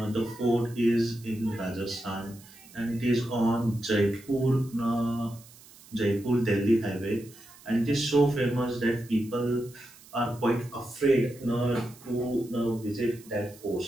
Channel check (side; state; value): right; noise; hiss, 22 dB below the sound